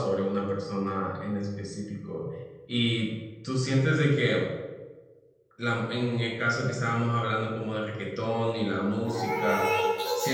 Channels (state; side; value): identical; both; correlation 1.00